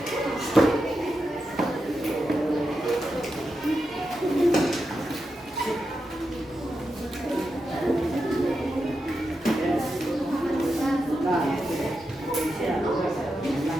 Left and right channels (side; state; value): both; normal; correlation 0.88